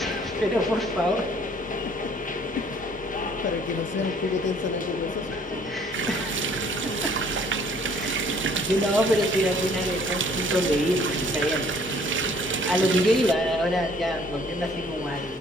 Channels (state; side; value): normal; both; correlation 0.58